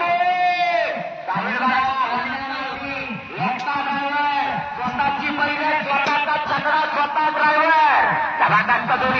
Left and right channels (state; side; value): identical; both; correlation 1.00